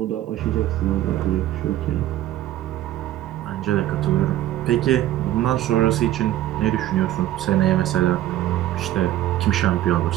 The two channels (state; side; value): quieter; left; 13.6 dB